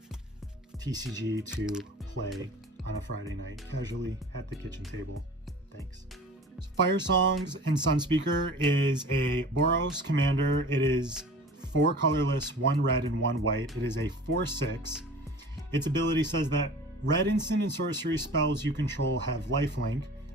TCG to play on a Friday night casually at the kitchen table. Thanks. So Firesongs and Sunspeaker is a boros commander. It is 4 colorless, 1 red and 1 white. It is a 4/6. Its ability says that red instant and sorcery spells you control have lifelink,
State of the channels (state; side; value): normal; both; correlation 0.41